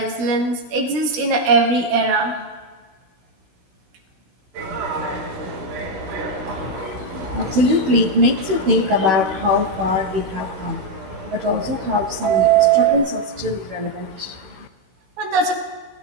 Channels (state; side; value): late; left; 16 ms